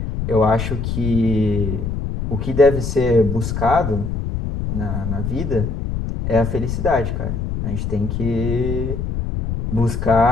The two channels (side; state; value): left; noise; rumble, 3 dB below the sound